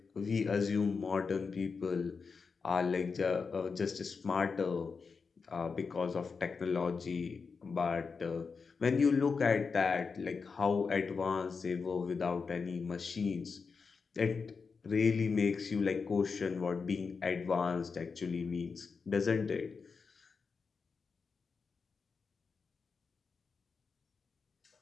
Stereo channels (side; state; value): right; quieter; 5.1 dB